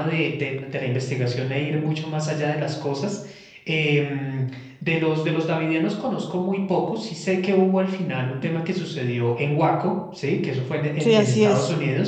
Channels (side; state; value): both; identical; correlation 1.00